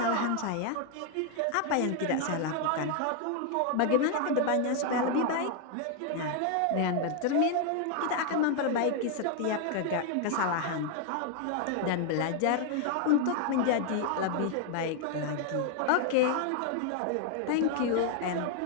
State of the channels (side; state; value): both; different; correlation 0.00